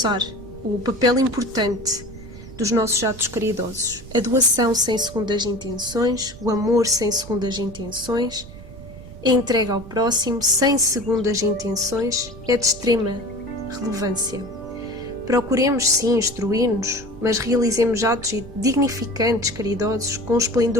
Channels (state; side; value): noise; right; rumble, 16 dB below the sound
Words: o papel importante dos nossos atos caridosos. A doação sem segundas intenções, o amor sem segundas intenções, a entrega ao próximo sem segundas intenções é de extrema relevância. Procuremos sim instruir-nos, mas realizemos atos dignificantes, caridosos, com